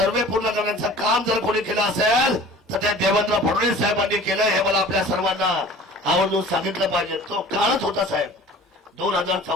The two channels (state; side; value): normal; both; correlation 0.44